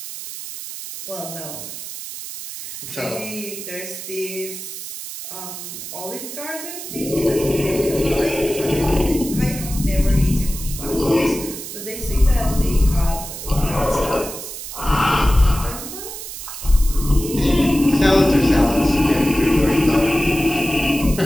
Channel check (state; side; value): noise; right; hiss, 10 dB below the sound